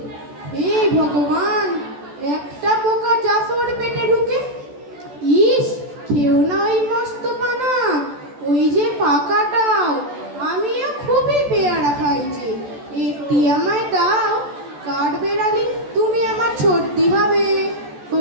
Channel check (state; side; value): late; left; 14 ms